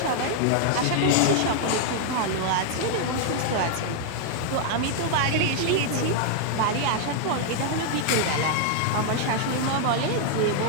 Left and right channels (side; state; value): both; different; correlation 0.00